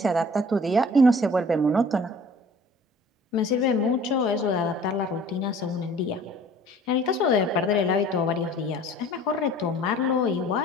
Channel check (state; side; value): normal; both; correlation 0.49